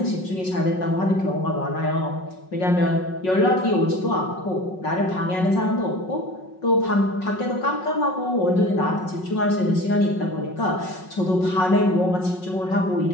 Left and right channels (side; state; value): right; late; 5.4 ms